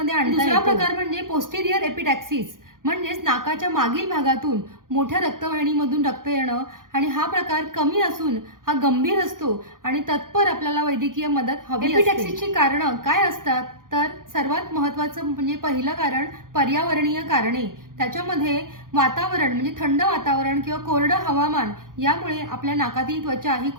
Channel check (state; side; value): late; left; 0.90 ms